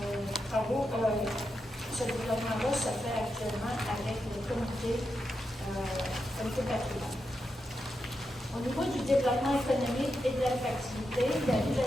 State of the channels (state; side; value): normal; both; correlation 0.86